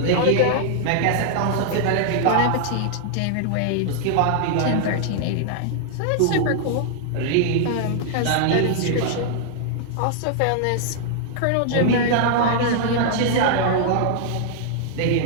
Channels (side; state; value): both; different; correlation -0.01